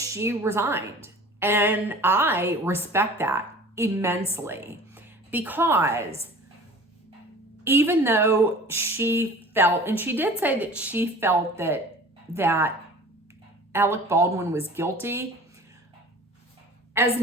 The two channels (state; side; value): normal; both; correlation 0.43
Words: resigned. And I respect that immensely, because even though she felt, and she did say that she felt that Alec Baldwin was guilty, as